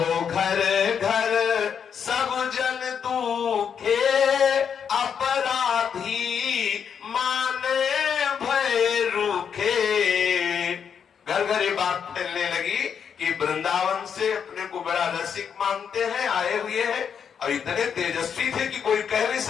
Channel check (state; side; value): quieter; right; 7.3 dB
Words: घर घर सब जन दुखे, अपराधी माने भय रूखे। घर घर ये बात फैलने लगी कि वृंदावन से अपने को बड़ा रसिक मानते हैं, आए हुए हैं, और इतने तेजस्वी थे कि कोई कह नहीं